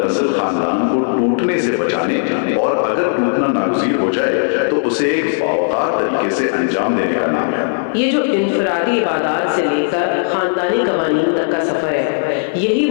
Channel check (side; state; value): right; silent; 57 dB below the other